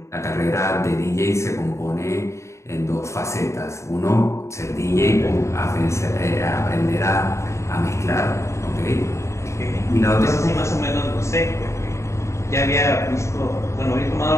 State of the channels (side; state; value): right; late; 0.14 ms